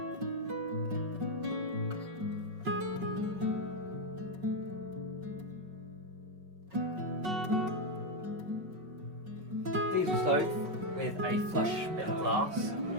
Diesel stove with a flush bit of glass,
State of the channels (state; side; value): late; left; 5.3 ms